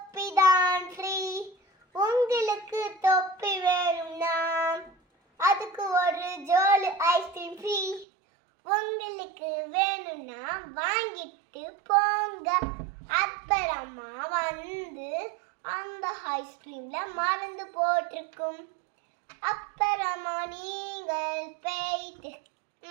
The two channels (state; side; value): drops out; left; at 8.1 s